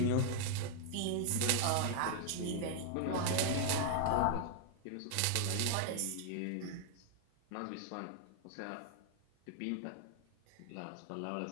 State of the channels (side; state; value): both; different; correlation 0.00